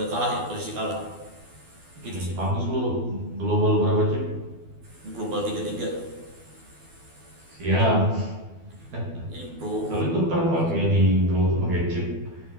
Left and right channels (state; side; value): late; left; 12 ms